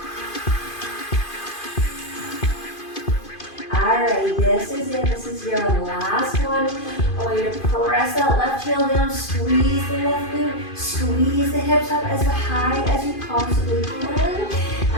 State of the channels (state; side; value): late; right; 2.5 ms